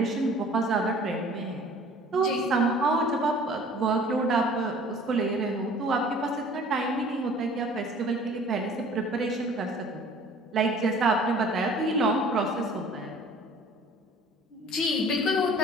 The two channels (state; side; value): normal; both; correlation 0.49